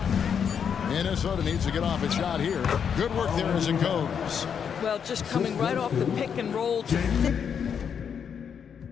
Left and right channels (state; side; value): quieter; right; 7.4 dB